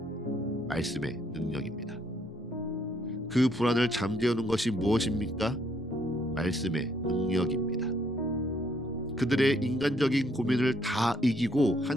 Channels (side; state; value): both; normal; correlation 0.69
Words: 말씀의 능력입니다. 그 불안을 잠재우는 것이 무엇입니까? 말씀의 능력입니다. 그들의 인간적인 고민을 다 이기고